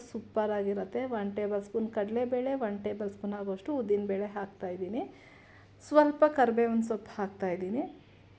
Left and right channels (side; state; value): both; identical; correlation 1.00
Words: ಸೂಪರಾಗಿರುತ್ತೆ. 1 ಟೇಬಲ್ ಸ್ಪೂನ್ ಕಡಲೆಬೇಳೆ, 1 ಟೇಬಲ್ ಸ್ಪೂನ್ ಆಗೋಷ್ಟು ಉದ್ದಿನಬೇಳೆ ಹಾಕ್ತಾಯಿದ್ದೀನಿ. ಸ್ವಲ್ಪ ಕರಿಬೇವಿನ ಸೊಪ್ಪು ಹಾಕ್ತಾಯಿದ್ದೀನಿ.